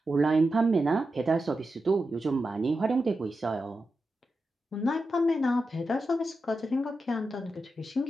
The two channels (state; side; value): normal; both; correlation 0.90